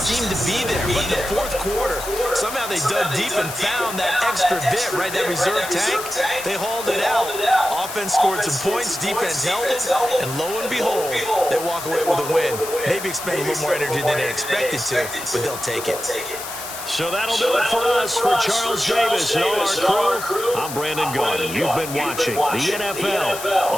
to be there. But in the fourth quarter, somehow they dug deep and found that extra bit, right, that reserve tank. They hauled it out. Offense scored some points, defense held it, and lo and behold, they walk away with a win. Maybe expend a little more energy than they expected to, but they'll take it. So that'll do it for us. For Charles Davis and all our crew, I'm Brandon Garden. You've been watching the NFL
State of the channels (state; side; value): noise; left; hiss, 10 dB below the sound